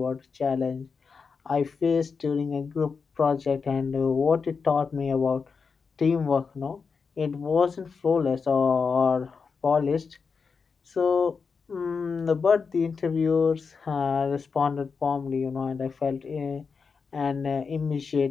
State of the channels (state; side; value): quieter; right; 5.3 dB